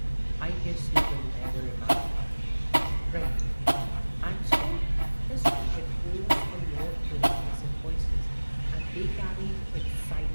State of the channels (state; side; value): inverted; both; correlation -1.00